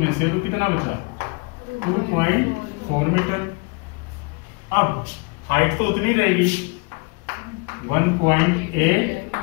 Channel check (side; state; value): right; quieter; 29.6 dB